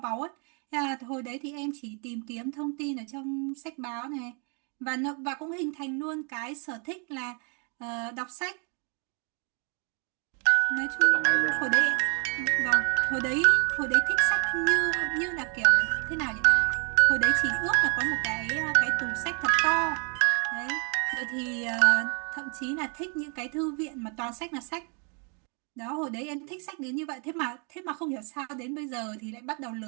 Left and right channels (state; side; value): quieter; left; 37.2 dB